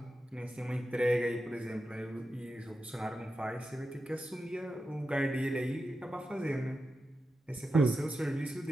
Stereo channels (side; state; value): both; normal; correlation 0.90